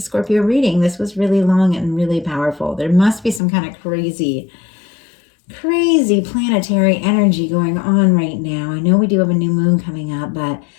Scorpio reading, this was really long and really powerful. There must be some kind of crazy planetary energy going on right now. I know we do have a new moon coming up, but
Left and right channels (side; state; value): right; drops out; at 3.4 s